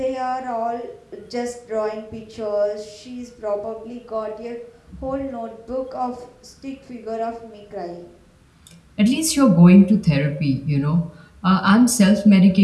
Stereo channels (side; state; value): both; identical; correlation 1.00